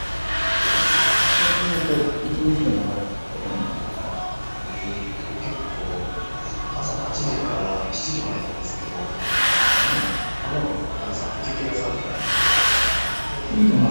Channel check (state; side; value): inverted; both; correlation -1.00